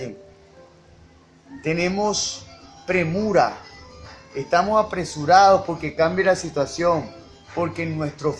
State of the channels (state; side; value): identical; both; correlation 1.00